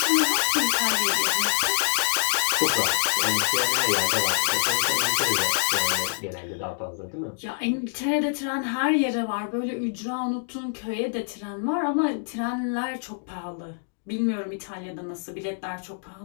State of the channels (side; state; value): right; silent; digital silence